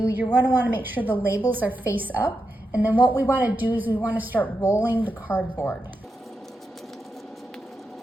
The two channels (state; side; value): normal; both; correlation 0.87